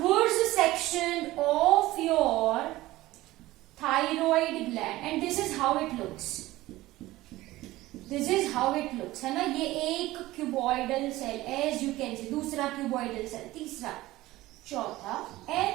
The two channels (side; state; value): left; quieter; 17.5 dB